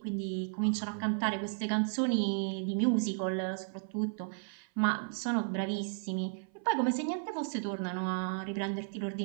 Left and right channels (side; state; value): left; silent; 55 dB below the other